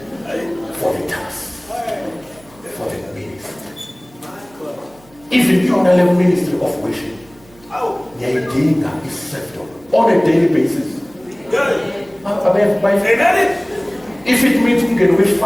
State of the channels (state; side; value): noise; right; hum, 27 dB below the sound